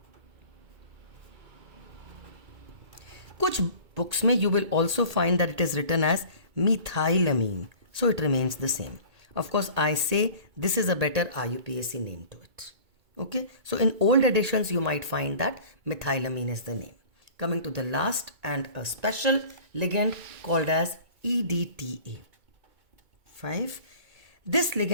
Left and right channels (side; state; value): left; late; 2.2 ms